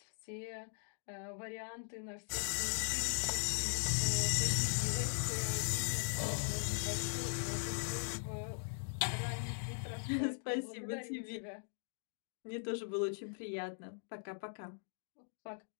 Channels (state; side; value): silent; right; digital silence